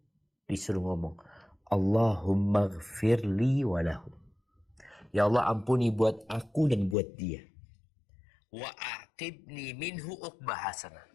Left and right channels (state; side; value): drops out; right; at 7.0 s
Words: Disuruh ngomong, Allahumma gfirli walahu. Ya Allah ampuni buat aku dan buat dia. Wa aqibni minhu uqbah hasanah.